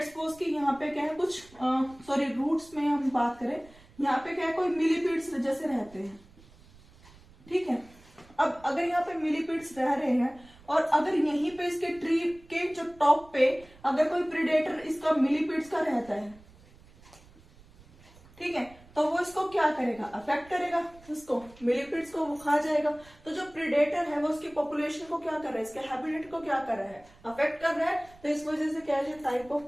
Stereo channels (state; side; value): noise; right; rumble, 25 dB below the sound